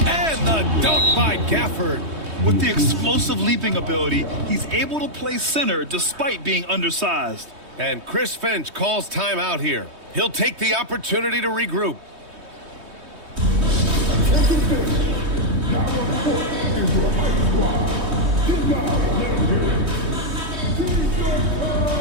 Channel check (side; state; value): left; late; 3.2 ms